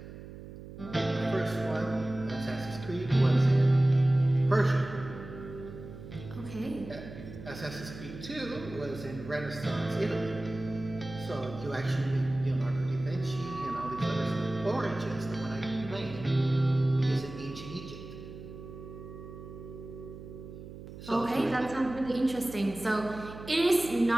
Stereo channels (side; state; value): right; noise; hum, 13 dB below the sound